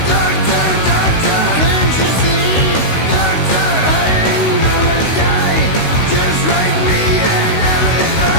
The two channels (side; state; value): right; late; 16 ms